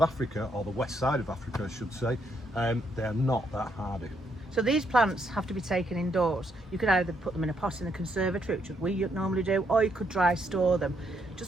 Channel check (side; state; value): both; normal; correlation 0.75